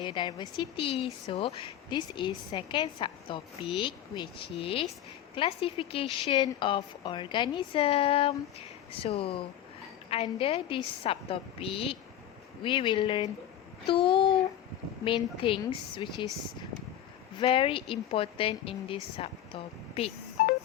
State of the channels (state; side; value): quieter; right; 11.1 dB